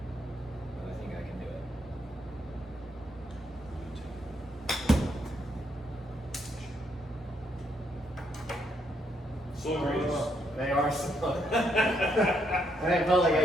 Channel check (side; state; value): both; normal; correlation 0.75